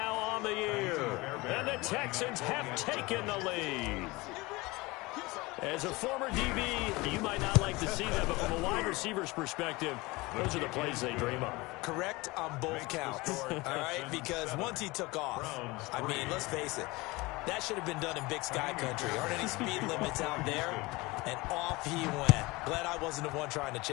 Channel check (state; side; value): quieter; right; 22.8 dB